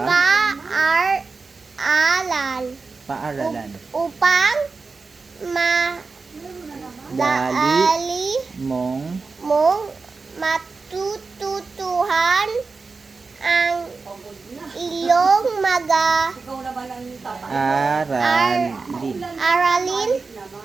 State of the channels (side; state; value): left; quieter; 4.3 dB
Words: paaralan upang madali mong matututuhan ang iyong aralin